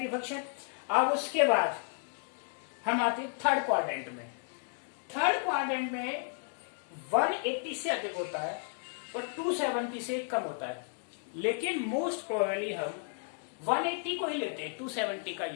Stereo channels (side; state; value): right; silent; 56 dB below the other